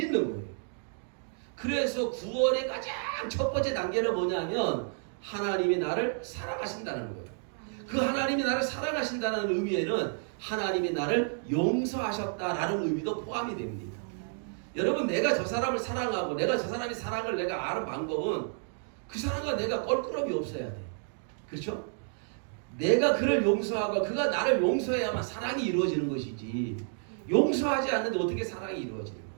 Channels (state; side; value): silent; left; 57 dB below the other